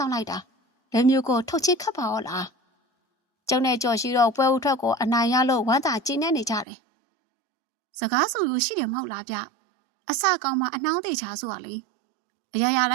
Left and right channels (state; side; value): drops out; left; at 6.7 s